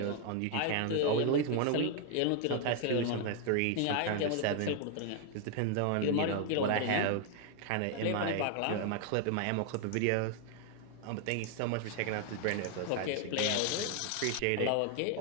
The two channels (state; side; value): different; both; correlation 0.00